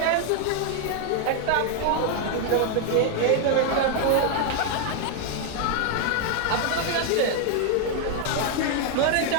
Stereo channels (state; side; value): different; both; correlation 0.00